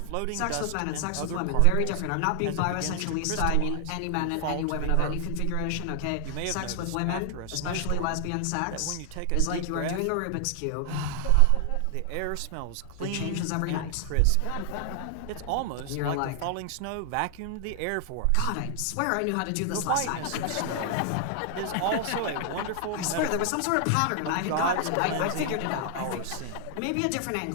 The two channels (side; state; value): both; different; correlation 0.00